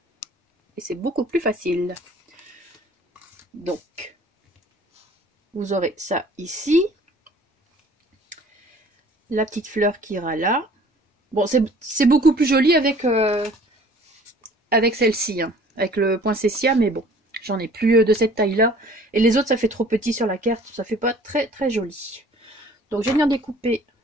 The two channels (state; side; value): normal; both; correlation 0.52